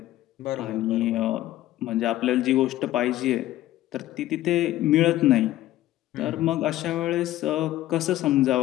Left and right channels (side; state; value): right; quieter; 14.9 dB